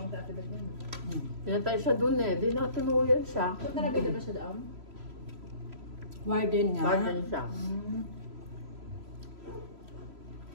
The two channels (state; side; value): late; left; 3.0 ms